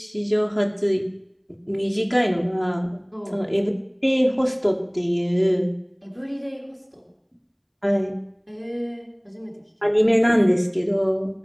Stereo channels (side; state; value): both; identical; correlation 1.00